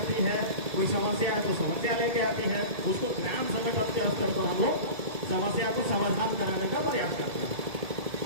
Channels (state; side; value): late; left; 1.7 ms